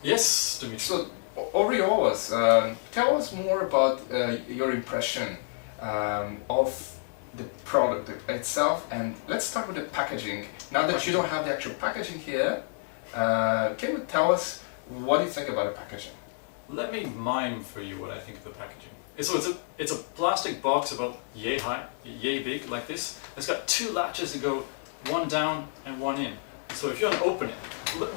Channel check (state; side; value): silent; right; digital silence